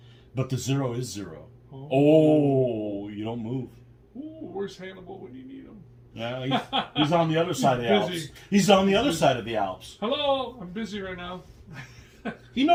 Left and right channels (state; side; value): identical; both; correlation 1.00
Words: But the 0 is 0. Oh, you don't move. Ooh, where's Hannibal when you need him? Yeah, he's on the other side of the Alps. He's on the other side of the Alps. Hello, I'm busy right now. He